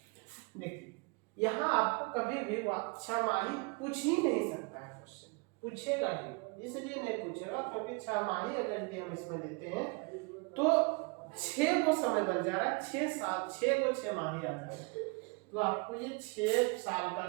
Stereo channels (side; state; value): left; quieter; 30.7 dB